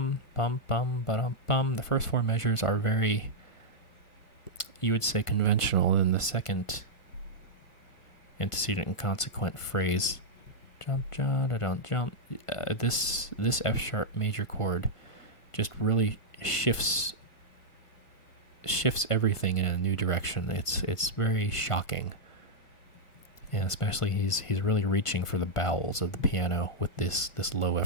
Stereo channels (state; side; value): late; right; 1.5 ms